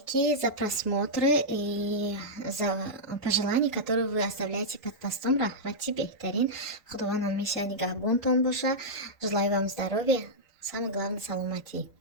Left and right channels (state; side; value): normal; both; correlation -0.08